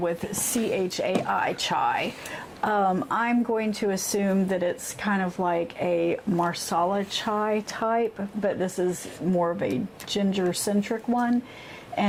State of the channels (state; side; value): identical; both; correlation 1.00